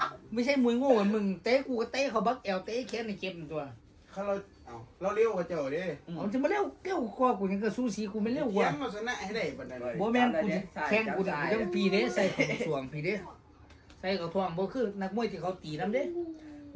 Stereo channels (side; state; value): both; identical; correlation 1.00